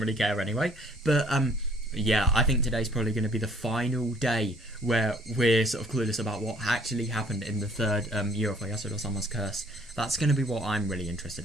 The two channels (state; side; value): normal; both; correlation 0.58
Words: care anyway. But yeah, I think today's probably going to be the final day where we're sort of clueless about what actually happened in the third year of Yasuda-sama's curse. That's going to be what I'm really